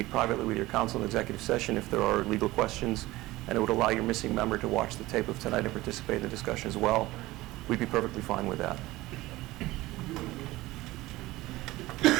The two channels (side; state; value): left; quieter; 18.5 dB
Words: privately with your counsel in executive session if there are legal questions, and it would allow your missing member to watch the tape of tonight and participate in the discussion as well, we'd be perfectly fine with that.